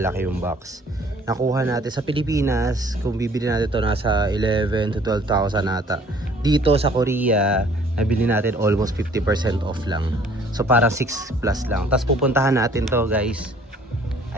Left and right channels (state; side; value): normal; both; correlation 0.56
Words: yung box. Nakuha natin sa Pilipinas, kung bibili natin to nasa 11 to 12,000 ata. Dito sa Korea, nabili natin almost 50% off lang. So parang 6 plus lang. Tapos pupuntahan natin to guys.